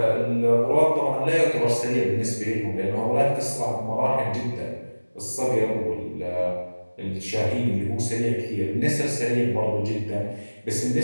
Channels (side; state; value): both; inverted; correlation -1.00